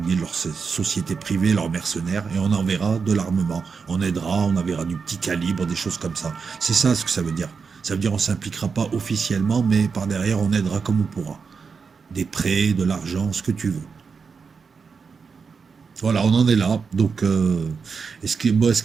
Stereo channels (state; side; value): quieter; left; 5.4 dB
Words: biais de leurs sociétés privées, leurs mercenaires, et on enverra de l'armement. On aidera, on enverra du petit calibre, des choses comme ça. C'est ça ce que ça veut dire. Ça veut dire on ne s'impliquera pas officiellement, mais par derrière, on aidera comme on pourra. Des prêts, de l'argent, ce que tu veux. Voilà, on en est là. Donc, et ce qui